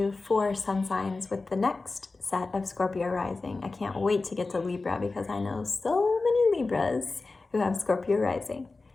4 sun signs with the next set of Scorpio rising. I can't wait to get to Libra because I know so many Libras who have Scorpio rising.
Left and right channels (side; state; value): right; quieter; 3.6 dB